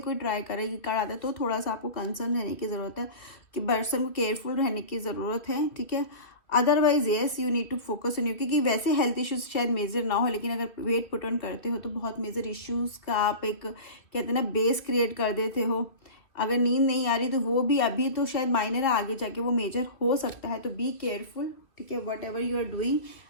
ट्राई करे ये कार्ड आता है, तो थोड़ा सा आपको कंसर्न रहने की ज़रूरत है, कि पर्सन को केयरफुल रहने की ज़रूरत है, ठीक है। Otherwise yes you need to focus on you, क्योंकि वैसे हेल्थ इश्यूज शायद मेजर ना हो, लेकिन अगर वेट पुट ऑन करते हो तो बहुत मेजर इश्यूज का आप एक कहते हैं ना बेस क्रिएट कर देते हो। अगर नींद नहीं आ रही तो वो भी अभी तो शायद माइनर है, आगे जाके वो मेजर हो सकता है। तो बी केयरफुल, ठीक है। Whatever you are doing,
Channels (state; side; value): late; right; 2.8 ms